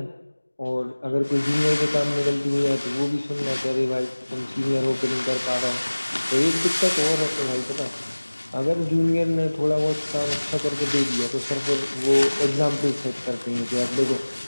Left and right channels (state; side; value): inverted; both; correlation -1.00